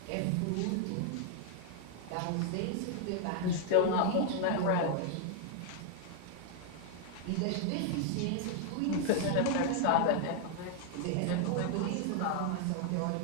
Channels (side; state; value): both; different; correlation 0.00